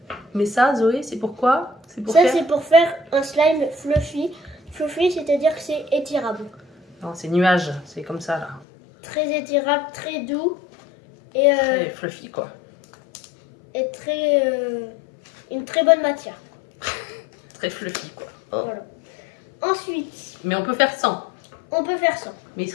Mais ça, Zoé, c'est pourquoi? C'est pour Ça, faire... c'est pour faire un slime fluffy. Fluffy, c'est-à-dire que c'est étirable. Non, c'est nuage, c'est comme ça là. Très étirable, très doux et, Très fluffy quoi. et une très bonne matière. Très fluffy quoi. Oh. Voilà. Ensuite, Mais on peut faire sans. on peut faire ça. Mais il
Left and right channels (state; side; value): drops out; right; at 8.7 s